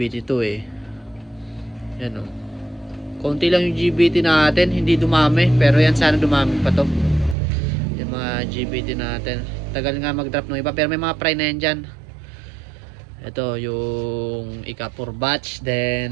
eh. Yan o. Konti lang yung GBT natin, hindi dumami. Pero yan sana dumami pa to. Yung mga GBT natin. Tagal nga mag-drop ng iba. Pero may mga fry na yan dyan. Ito yung ika-4 batch.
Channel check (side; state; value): left; drops out; at 7.4 s